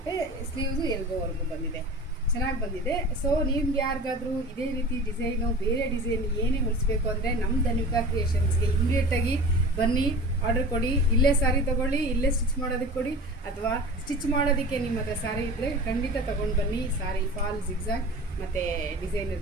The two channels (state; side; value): normal; both; correlation 0.37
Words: ಸ್ಲೀವ್ಸು ಎಲ್ಬೋವರೆಗೂ ಬಂದಿದೆ, ಚೆನ್ನಾಗಿ ಬಂದಿದೆ. ಸೊ ನಿಮ್ಗೆ ಯಾರಿಗಾದರೂ ಇದೇ ರೀತಿ ಡಿಸೈನು, ಬೇರೆ ಡಿಸೈನ್ ಏನೇ ಹೊಲಿಸ್ಬೇಕು ಅಂದರೆ ನಮ್ಮ ಧನ್ವಿಕಾ ಕ್ರಿಯೇಷನ್ಸ್ಗೆ ಇಮಿಡಿಯೇಟಾಗಿ ಬನ್ನಿ, ಆರ್ಡರ್ ಕೊಡಿ. ಇಲ್ಲೇ ಸಾರಿ ತೊಗೊಳ್ಳಿ, ಇಲ್ಲೇ ಸ್ಟಿಚ್ ಮಾಡೋದಕ್ಕೆ ಕೊಡಿ, ಅಥವಾ ಸ್ಟಿಚ್ ಮಾಡೋದಕ್ಕೆ ನಿಮ್ಮ ಹತ್ರ ಸಾರಿ ಇದ್ದರೆ ಖಂಡಿತ ತೊಗೊಂಡು ಬನ್ನಿ. ಸಾರಿ ಫಾಲ್, ಜಿಗ್ಜಾಗ್ ಮತ್ತು ಡಿಸೈನರ್